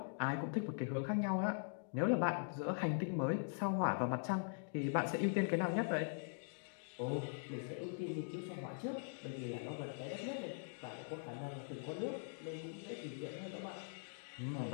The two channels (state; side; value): silent; right; digital silence